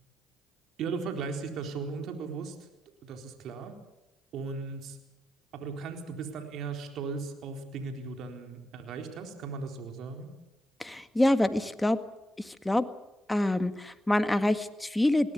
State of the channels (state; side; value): normal; both; correlation 0.87